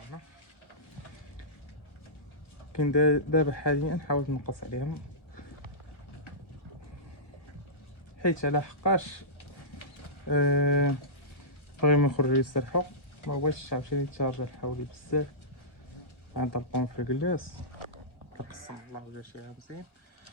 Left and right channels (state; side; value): late; right; 1.2 ms